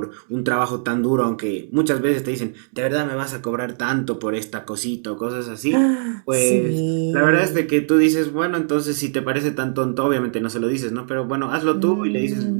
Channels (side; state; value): left; silent; digital silence